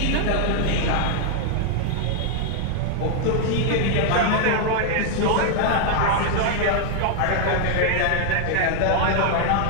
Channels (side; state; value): both; different; correlation 0.00